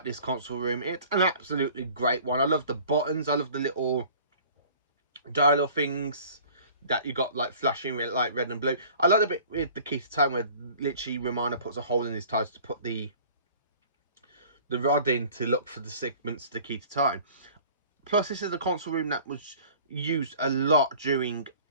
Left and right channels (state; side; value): inverted; both; correlation -0.48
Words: this console room. It's an absolutely great one. I love the buttons. I love the little dial things that you got like flashing like red and blue. I like the bit with the key to time where literally Romana puts a hole in his tires to put the rod in to look for the segments to the key to time. Plus, this is the console room that was used a lot during